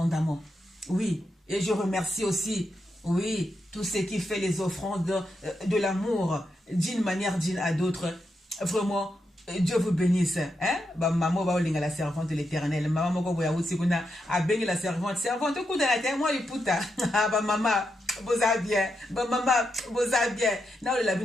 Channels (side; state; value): both; normal; correlation 0.84